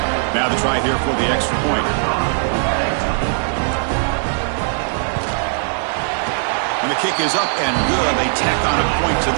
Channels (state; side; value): silent; left; 64 dB below the other